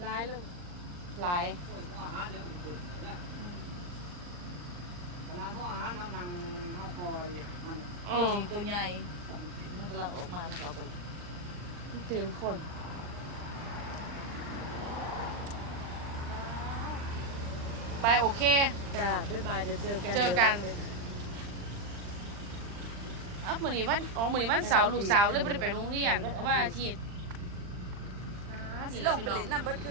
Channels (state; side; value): late; left; 39 ms